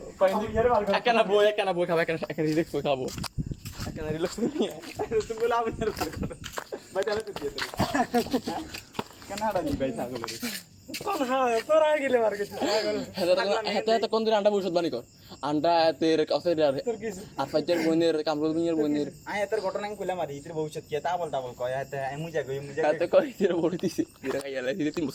একখানা বই খাবো একটা রিল্যাক্স বই খাবো একটা রিল্যাক্স বই নিয়ে তুমি বলে আমি আর পার করো ভাই তাহলে তো দিয়ে দেবে কেন হাড়া নি ভাই ছাগলের কোন হ্যাঁ তোরা গেলে মার গেছিস হেতে কোন দিন আন্ডা ভবিষ্যৎ বাণী কর আন্ডা এতের কাছে তোর কিছু আর ফাইজার বোনের কামরুল মিয়ার বোনের আয় এত ঘটনা আমি কইলাম আর ইতির ভবিষ্যৎ কি তা বলতা বল কয় এত মুজা গই এতে কই এর বড় দিছে এরা খাইলা দিতে 3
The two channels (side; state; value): both; identical; correlation 1.00